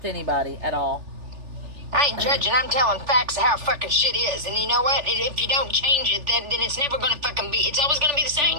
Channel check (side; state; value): left; late; 3.4 ms